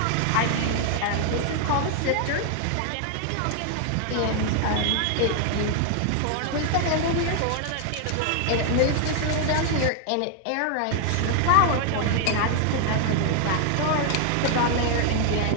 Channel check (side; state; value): both; different; correlation 0.00